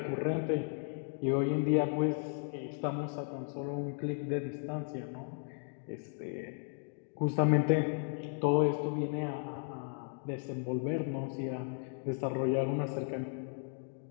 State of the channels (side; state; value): right; silent; 54 dB below the other